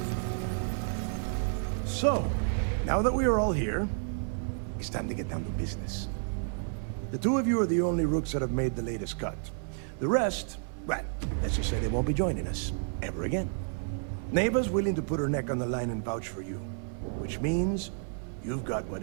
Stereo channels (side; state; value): left; silent; 57 dB below the other